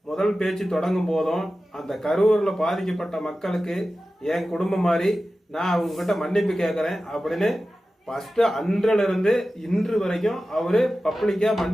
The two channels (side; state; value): both; normal; correlation 0.94